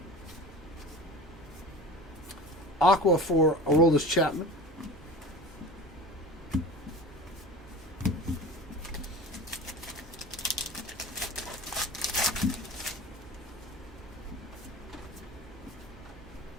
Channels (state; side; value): normal; both; correlation 0.36